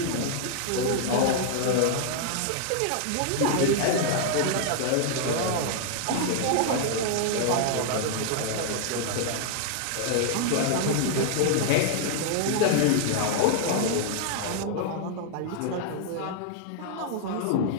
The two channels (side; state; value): both; different; correlation 0.00